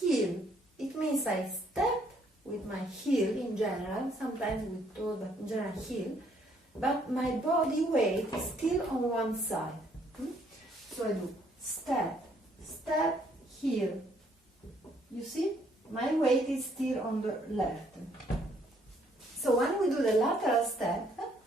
It means I step with my heel in general, sometimes with toe, but in general heel, but my body weight is still on one side. So I do step, step, heel. You see? My weight is still on the left. So when we do the lateral step,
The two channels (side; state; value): both; normal; correlation 0.67